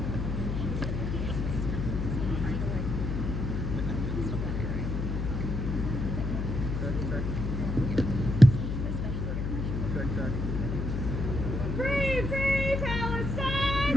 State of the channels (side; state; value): left; noise; hum, 1 dB below the sound